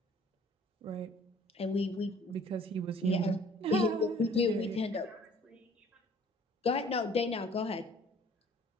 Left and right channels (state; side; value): normal; both; correlation 0.54